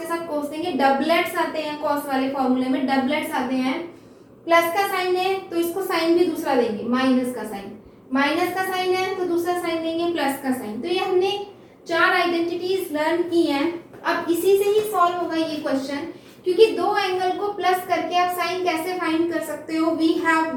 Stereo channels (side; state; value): both; identical; correlation 1.00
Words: साथ कॉस देंगे। डबलेट्स आते हैं कॉस वाले फॉर्मूले में, डबलेट्स आते हैं। प्लस का साइन है तो इसको साइन भी दूसरा देंगे, माइनस का साइन, माइनस का साइन है तो दूसरा साइन देंगे प्लस का साइन। तो ये हमने 4 आइडेंटिटीज लर्न की हैं। अब इसी से ही सॉल्व होगा ये क्वेश्चन, क्योंकि दो एंगल को प्लस करके आप साइन कैसे फाइंड कर सकते हो। वी हैव